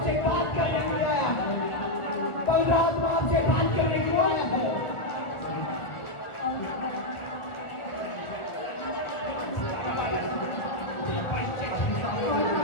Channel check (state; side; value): late; right; 1.4 ms